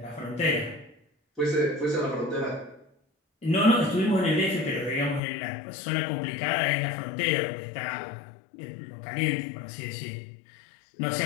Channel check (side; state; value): right; drops out; at 5.2 s